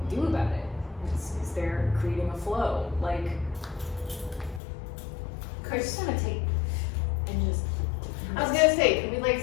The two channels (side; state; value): right; drops out; at 4.6 s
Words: do about it? Is there creating a flow? Like, I just want to take and just. I was gonna say, can we like